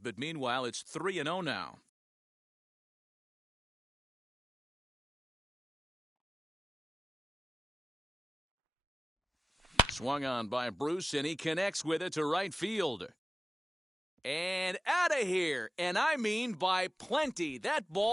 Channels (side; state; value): both; normal; correlation 0.94